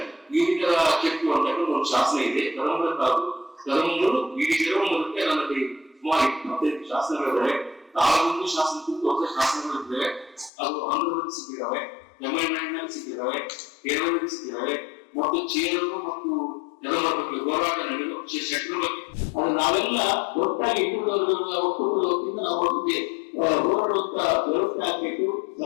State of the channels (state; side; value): drops out; right; at 10.5 s